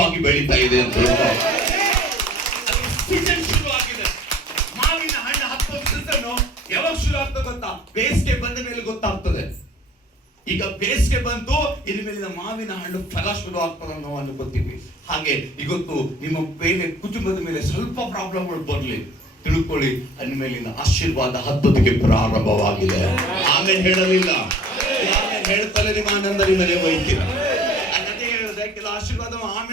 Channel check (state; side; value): normal; both; correlation 0.50